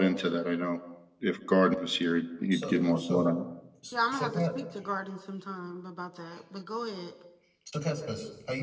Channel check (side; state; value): both; identical; correlation 1.00